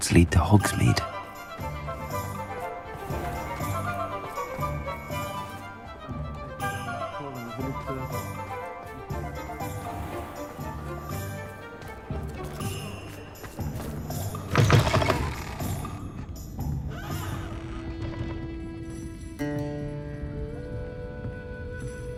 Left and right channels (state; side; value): identical; both; correlation 1.00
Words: lead to Hogsmeade.